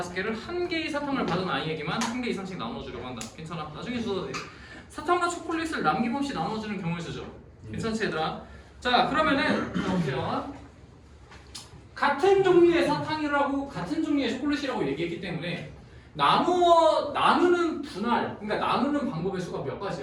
1개의 사탕을 받은 아이에게만 1개 이상씩 나눠주려고 한다. 괜찮아. 나중에 써도 돼. 사탕과 초콜릿을 남김없이 나눠주는 경우에 쓰죠. 괜찮지 얘들아? 자 그러면은 자, 보세요. 같은 종류의 사탕이라고 같은 종류의 초콜릿이라고 얘기했기 때문에 나누는 분할 그러니까 나누는 방법의 수가 몇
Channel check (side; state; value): both; identical; correlation 1.00